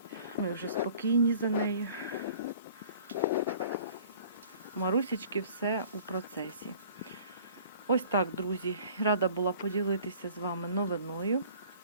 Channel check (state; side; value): inverted; both; correlation -0.50